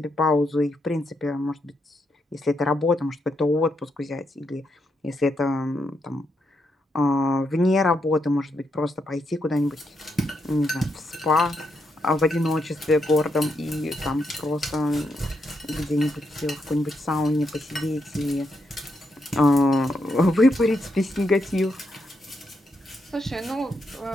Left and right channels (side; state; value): both; normal; correlation 0.80